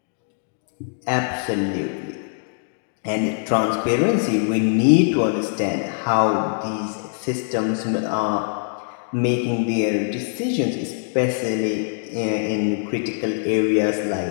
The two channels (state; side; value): silent; right; digital silence